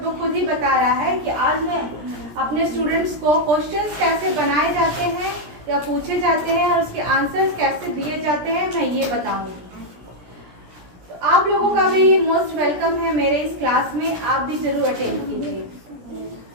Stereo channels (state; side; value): late; left; 17 ms